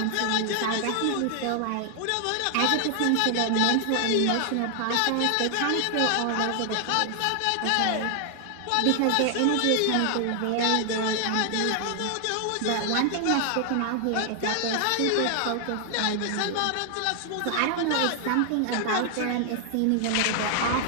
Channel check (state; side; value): different; both; correlation 0.00